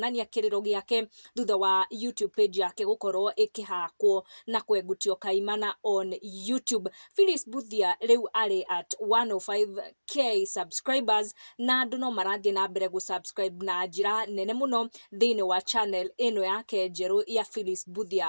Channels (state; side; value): inverted; both; correlation -1.00